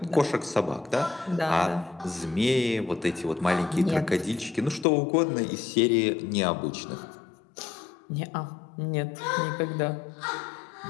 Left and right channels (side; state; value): right; drops out; at 4.9 s